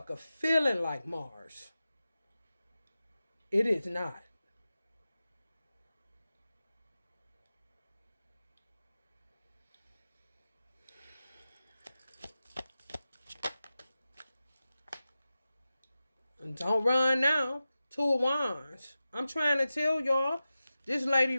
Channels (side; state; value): both; inverted; correlation -0.94